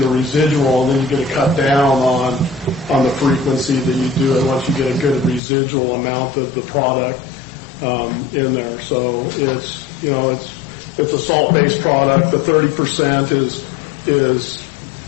a residual, and then you get a cut down on the frequency that you do it once you get a good residual amount of the product in there. So it's a salt-based product. The 30% is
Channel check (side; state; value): right; drops out; at 5.4 s